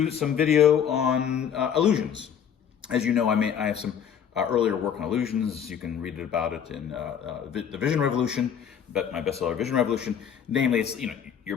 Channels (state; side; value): quieter; right; 8.3 dB